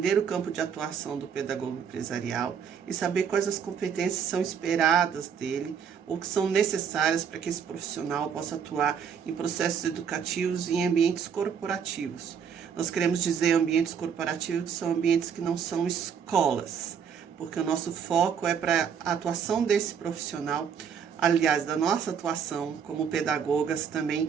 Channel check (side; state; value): left; quieter; 7.3 dB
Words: o campo de atuação do pedagogo empresarial e saber quais as competências são esperadas dele ou que são necessárias para que esse profissional possa atuar em processos educativos e em ambientes corporativos. Nós queremos dizer ambientes corporativos que são ambientes que não são escolas, porque o nosso foco é para a atuação desse profissional, aliás, da nossa atuação como pedagogas também